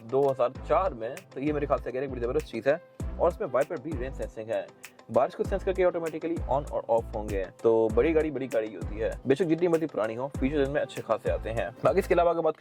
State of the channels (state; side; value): identical; both; correlation 1.00